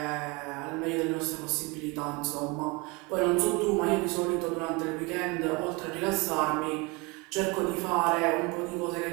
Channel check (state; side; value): quieter; left; 27.1 dB